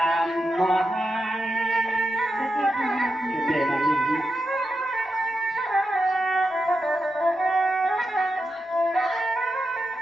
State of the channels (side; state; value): both; normal; correlation 0.88